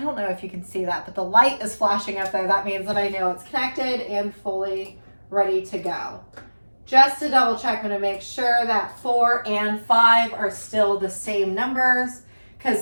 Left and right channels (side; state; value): both; inverted; correlation -1.00